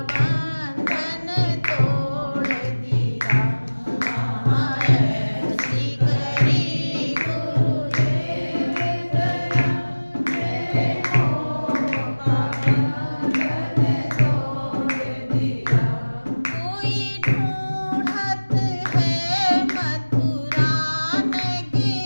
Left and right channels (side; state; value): both; inverted; correlation -1.00